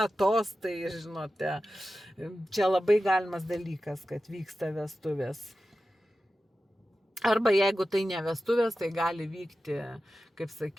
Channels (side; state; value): both; normal; correlation 0.93